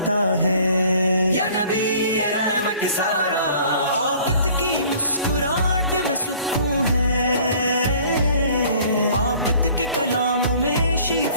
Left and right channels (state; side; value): inverted; both; correlation -0.52